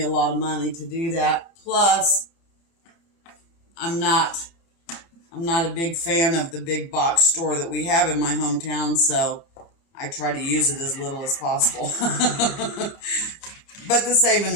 a lot of money to do that. Plus, I'm not a big fan of the big box store that we have in my hometown, so I try to use it as little as possible. But the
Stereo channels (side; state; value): right; late; 30 ms